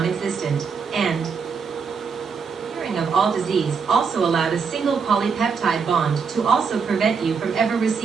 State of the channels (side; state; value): left; quieter; 5.7 dB